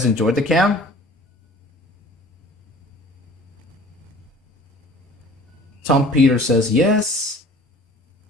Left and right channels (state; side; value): normal; both; correlation 0.47